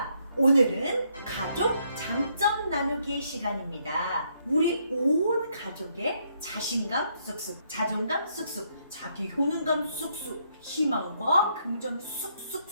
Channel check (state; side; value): inverted; both; correlation -0.73